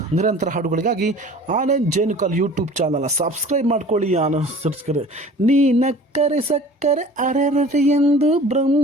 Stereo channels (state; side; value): normal; both; correlation 0.45